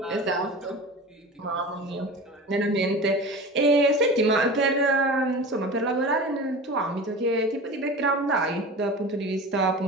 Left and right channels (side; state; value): both; normal; correlation 0.33